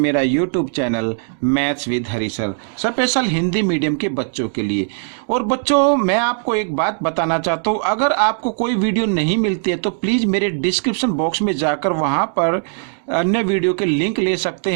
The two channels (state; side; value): silent; left; 67 dB below the other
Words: YouTube channel maths with Hari sir, special Hindi medium के बच्चों के लिए। और बच्चों मैं आपको एक बात बताना चाहता हूं, अगर आपको कोई वीडियो नहीं मिलती है तो प्लीज़ मेरे डिस्क्रिप्शन बॉक्स में जाकर वहां पर अन्य वीडियो के लिंक ले सकते